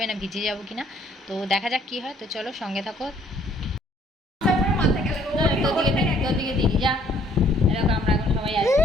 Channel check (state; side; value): normal; both; correlation 0.62